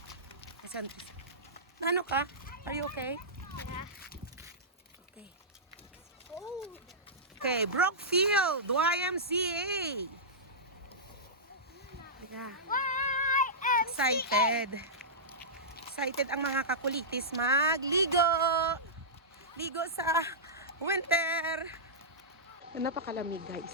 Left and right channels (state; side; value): normal; both; correlation -0.15